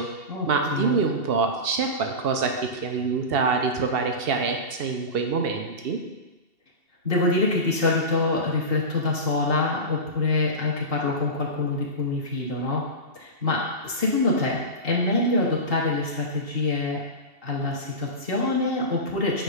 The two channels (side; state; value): left; late; 2.7 ms